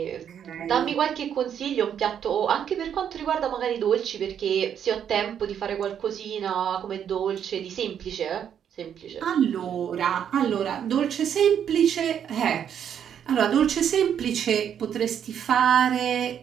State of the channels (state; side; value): quieter; left; 8.8 dB